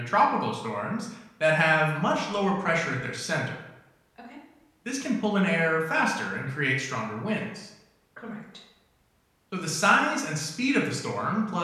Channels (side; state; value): both; identical; correlation 1.00